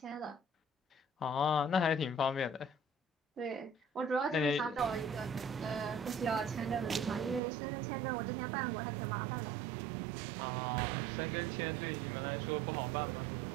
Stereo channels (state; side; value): drops out; left; at 7.4 s